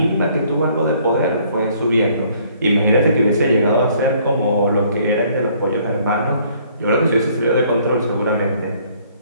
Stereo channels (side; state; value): both; inverted; correlation -0.61